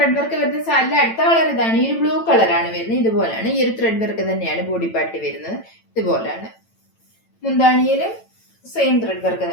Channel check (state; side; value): late; right; 9.0 ms